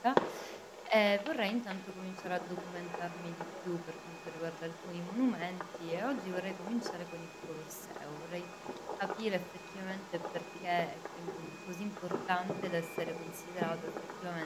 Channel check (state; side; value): identical; both; correlation 1.00